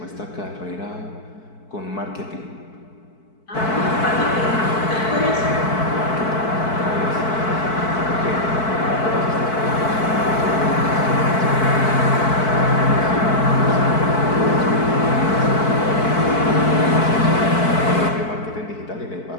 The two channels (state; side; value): late; right; 4.6 ms